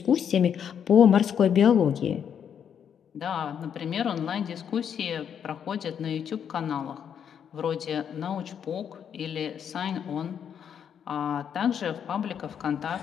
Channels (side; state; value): right; quieter; 8.2 dB